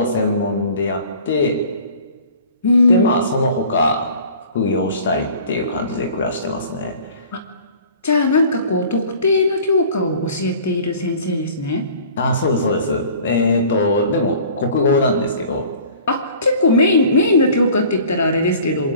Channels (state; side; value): inverted; both; correlation -0.47